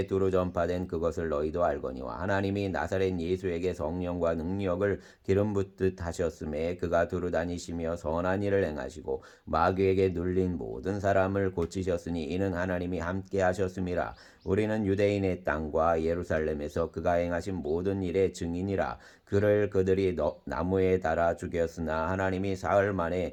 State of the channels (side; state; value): both; identical; correlation 1.00